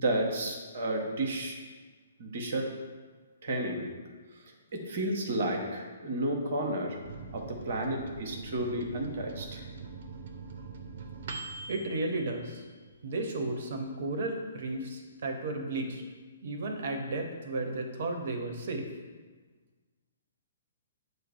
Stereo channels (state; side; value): inverted; both; correlation -0.55